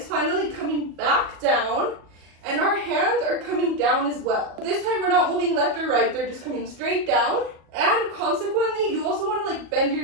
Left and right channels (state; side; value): late; left; 37 ms